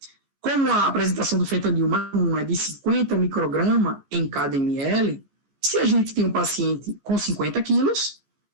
Como a apresentação do fentanil mais comum é de 50 microgramas em cada ml, se a gente tem um paciente com 50 quilos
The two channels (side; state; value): left; late; 14 ms